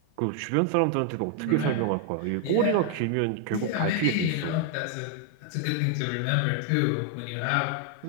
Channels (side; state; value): both; different; correlation 0.00